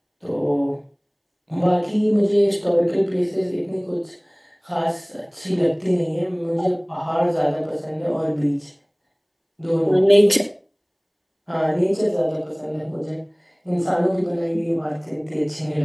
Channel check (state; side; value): identical; both; correlation 1.00